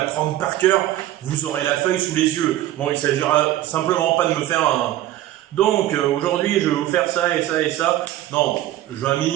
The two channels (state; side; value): quieter; left; 14.0 dB